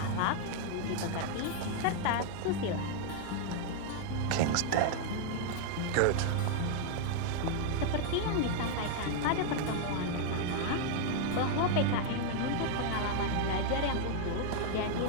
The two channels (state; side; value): different; both; correlation 0.00